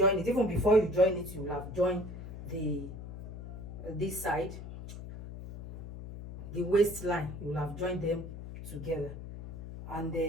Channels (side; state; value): left; noise; hum, 11 dB below the sound